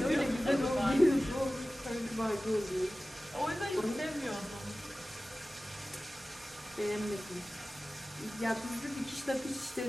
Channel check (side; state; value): both; normal; correlation 0.96